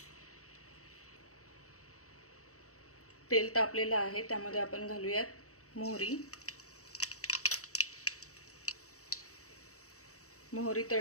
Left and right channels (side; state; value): right; late; 0.65 ms